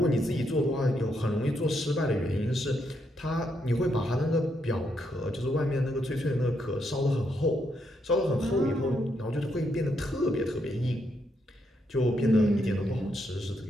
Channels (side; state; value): both; normal; correlation 0.78